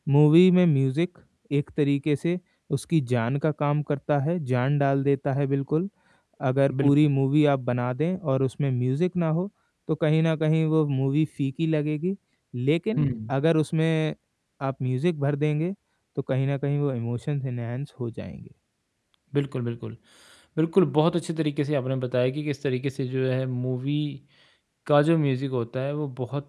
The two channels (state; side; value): identical; both; correlation 1.00